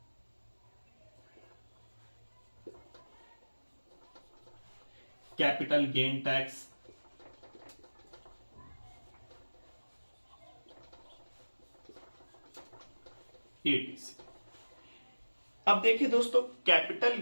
Capital gain tax, ETC। अब देखिए दोस्तों, capital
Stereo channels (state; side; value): inverted; both; correlation -1.00